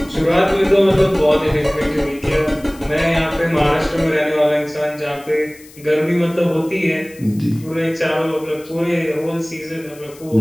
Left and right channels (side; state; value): left; noise; hiss, 23 dB below the sound